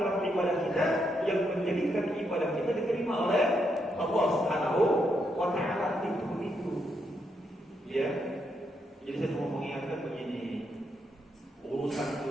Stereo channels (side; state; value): both; normal; correlation 0.79